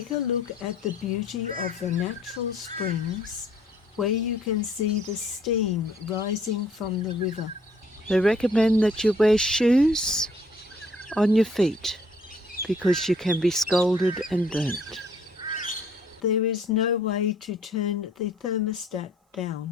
a look at the beauty of the natural springs where you can see the steam rising from the river. They recommend that you wear shoes on your feet because you can be scalded and burnt. There is no way to turn the thermostat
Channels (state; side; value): normal; both; correlation 0.61